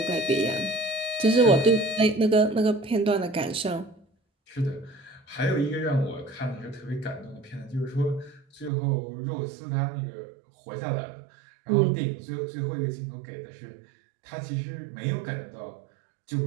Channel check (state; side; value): drops out; left; at 8.7 s